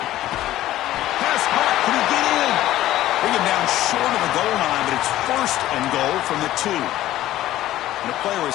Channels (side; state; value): right; quieter; 14.3 dB